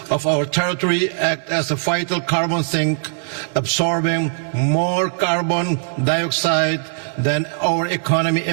of our territory, act as a vital carbon sink, absorbing more carbon dioxide than our economy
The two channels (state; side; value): silent; left; 66 dB below the other